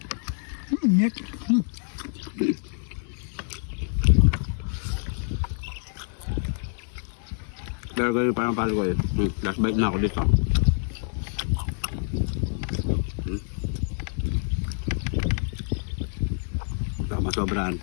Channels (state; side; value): silent; right; 60 dB below the other